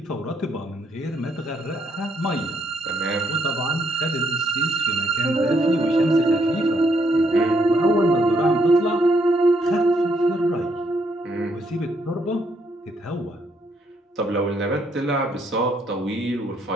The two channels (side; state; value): both; normal; correlation 0.73